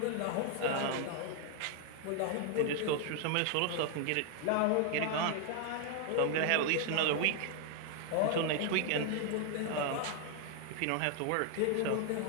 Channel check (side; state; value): both; different; correlation 0.00